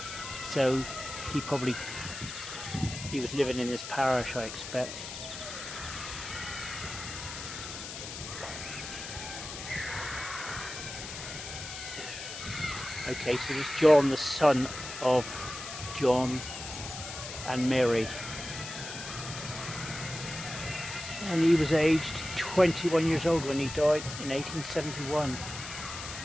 So he was living in this parish, I expect. Okay, so there's John, the son of John and Mary. And he was aged 21 years old when he died in 1871.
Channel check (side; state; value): left; noise; hiss, 9 dB below the sound